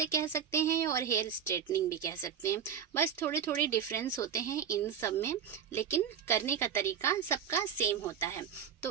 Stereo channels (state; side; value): quieter; left; 8.1 dB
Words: कह सकते हैं और हेयर स्ट्रेटनिंग भी कह सकते हैं। बस थोड़े थोड़े डिफरेंस होते हैं इन सब में, लेकिन करने का तरीका सबका सेम होता है।